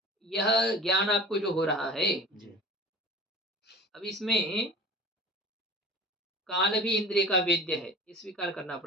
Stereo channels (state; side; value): normal; both; correlation 0.38